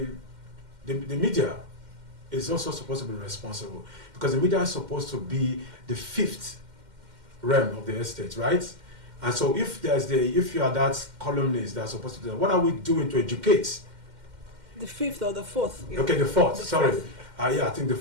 media is also supposed to be responsible, because the media is supposed to be the fifth realm of the estate, right? And so if you are that columnist that's supposed to do that, what are we doing to educate? The fifth or the fourth? Okay, the fourth. Sorry. I think the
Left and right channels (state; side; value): late; left; 2.1 ms